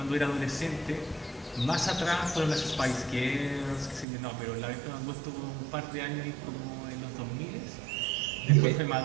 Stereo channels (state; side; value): drops out; left; at 4.0 s